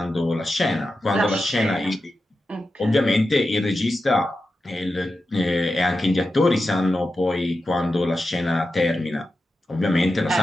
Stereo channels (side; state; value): both; normal; correlation 0.91